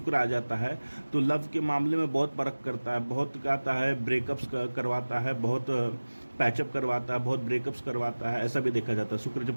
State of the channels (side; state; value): both; inverted; correlation -1.00